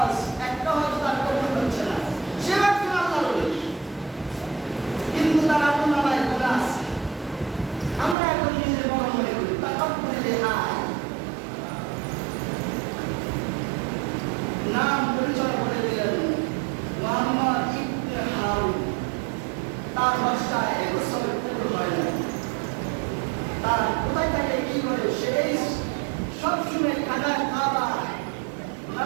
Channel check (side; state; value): left; drops out; at 8.2 s